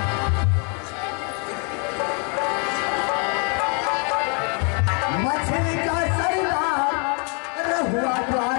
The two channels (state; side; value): quieter; right; 36.9 dB